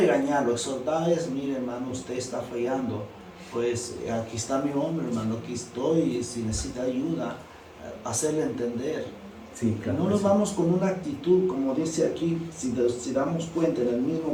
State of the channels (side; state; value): both; identical; correlation 1.00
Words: exhortar es, mire hermano, usted está fallando, pues aquí está mi hombre hermano, aquí estoy, si necesita ayuda, hacerle entender. Sí, claro, no nos vamos con una actitud, como dice aquí, si damos cuenta, en el